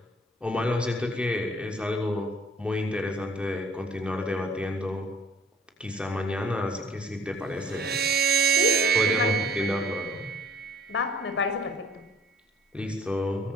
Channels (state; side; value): normal; both; correlation 0.55